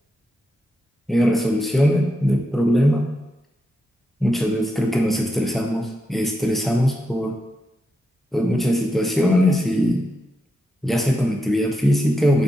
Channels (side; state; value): both; normal; correlation 0.86